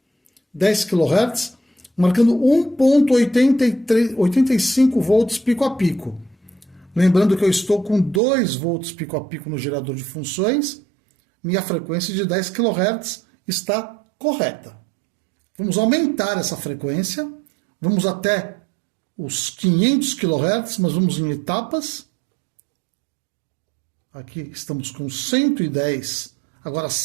10 kHz, marcando 1.85 volts pico a pico. Lembrando que eu estou com 2 volts pico a pico no gerador de funções. Minha frequência de 10 kHz está correta. Vamos aumentar essa frequência. Vamos até os 500 kHz, mas vamos em etapas. Aqui estamos com 110, agora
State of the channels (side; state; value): left; drops out; at 8.2 s